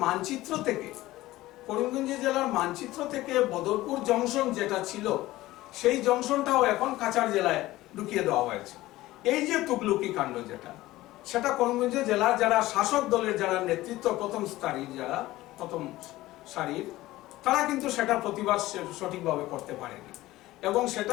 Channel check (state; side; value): quieter; right; 17.1 dB